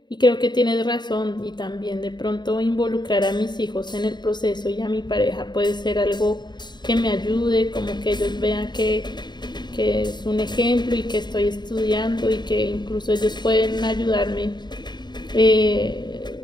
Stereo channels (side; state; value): right; late; 0.21 ms